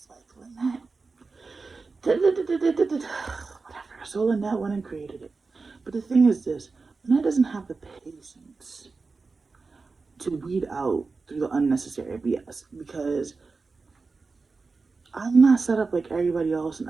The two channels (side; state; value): left; quieter; 4.2 dB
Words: like, Linette, whatever. So Linette went and created it. But the thing is this, Linette doesn't have the patience to weed out through the unnecessary BS because I'm not set up like everybody else, and